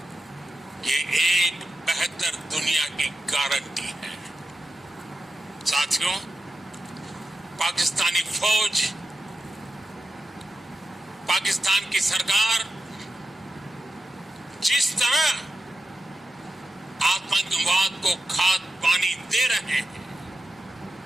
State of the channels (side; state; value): both; normal; correlation 0.90